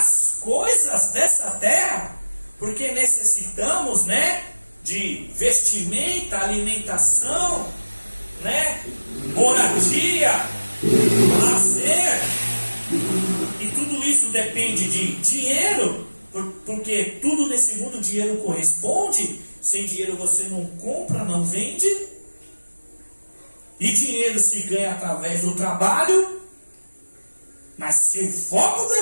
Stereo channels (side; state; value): both; inverted; correlation -1.00